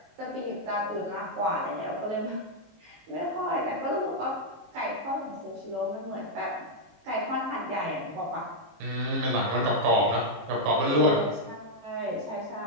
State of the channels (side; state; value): left; late; 19 ms